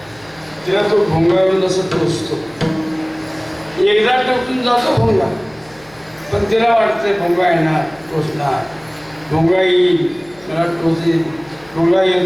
तिला तो भोंगावरून असं टोचतो. एकदा टोचून जातो भोंगा, पण तिला वाटतंय भोंगा येणार, टोचणार, भोंगा येईल मला टोचेल, भोंगा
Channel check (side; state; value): left; noise; hum, 27 dB below the sound